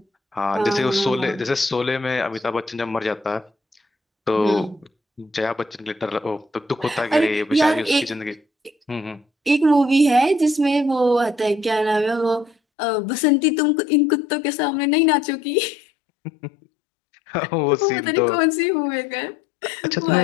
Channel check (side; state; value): right; drops out; at 12.6 s